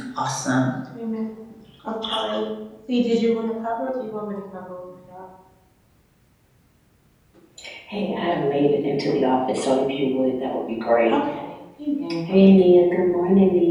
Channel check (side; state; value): both; identical; correlation 1.00